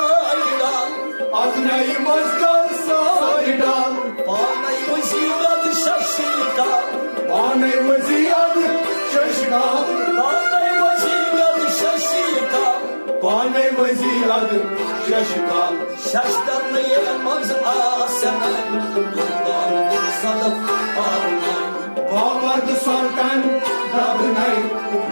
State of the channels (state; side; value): inverted; both; correlation -1.00